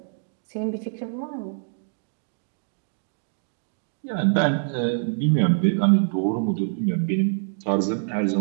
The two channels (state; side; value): silent; left; digital silence